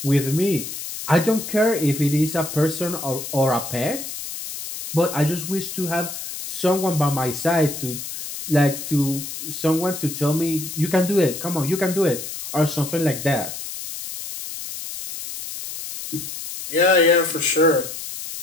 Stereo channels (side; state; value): left; noise; hiss, 8 dB below the sound